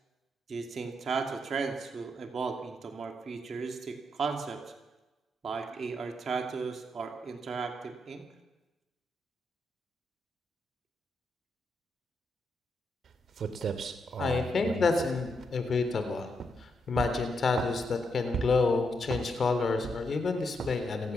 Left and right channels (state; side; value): normal; both; correlation 0.81